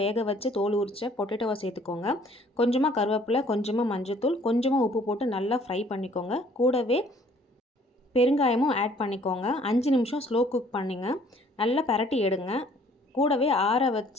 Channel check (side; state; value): both; normal; correlation 0.58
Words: வேக வச்சு தோல் உரிச்ச பொட்டேட்டோவை சேர்த்துக்கோங்க. கொஞ்சமாக கருவேப்பிலை, கொஞ்சமாக மஞ்சத்தூள், கொஞ்சமாக உப்பு போட்டு நல்லா ஃப்ரை பண்ணிக்கோங்க. கூடவே பெருங்காயமும் ஆட் பண்ணிக்கோங்க. 5 நிமிஷம் ஸ்லோ குக் பண்ணிங்க. நல்லா பரட்டி எடுங்க. கூடவே ஆற